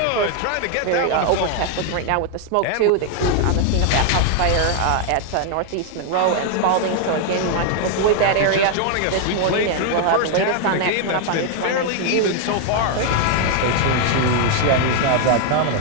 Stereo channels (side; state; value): both; different; correlation 0.00